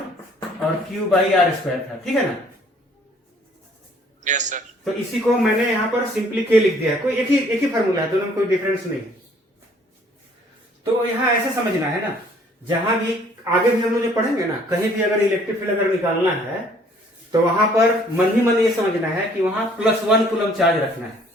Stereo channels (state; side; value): normal; both; correlation 0.59